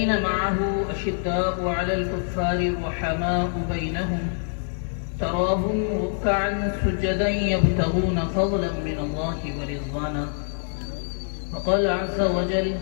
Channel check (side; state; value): right; silent; digital silence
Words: معه أشداء على الكفار رحماء بينهم تراهم ركعا سجدا يبتغون فضلا من الله ورضوانا. وقال عز وجل: